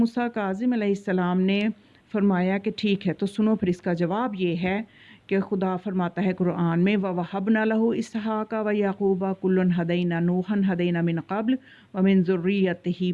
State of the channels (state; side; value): identical; both; correlation 1.00